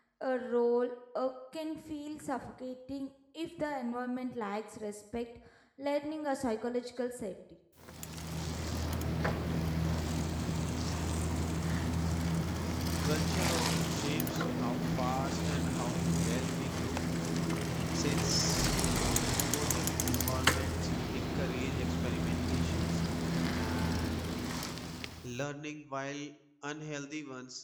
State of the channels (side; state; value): both; identical; correlation 1.00